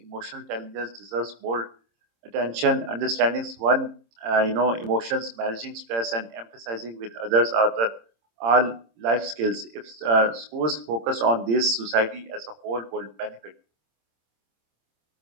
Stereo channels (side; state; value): left; late; 26 ms